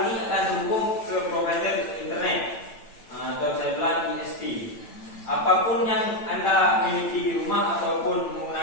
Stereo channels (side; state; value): right; late; 8.9 ms